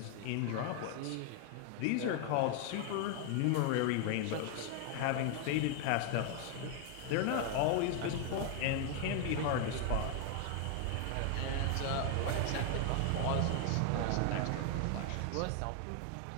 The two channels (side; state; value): both; different; correlation 0.00